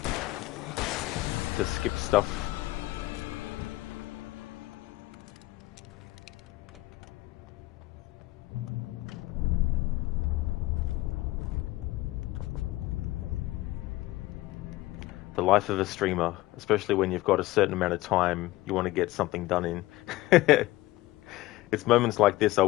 to skip stuff. The life of a streamer, especially when you've got a certain amount of time you want to get something done in. It's moments like this I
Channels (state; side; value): quieter; right; 18.2 dB